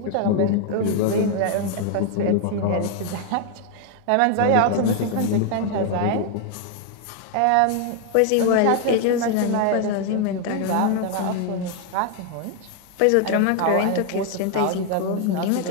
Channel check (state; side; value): different; both; correlation 0.01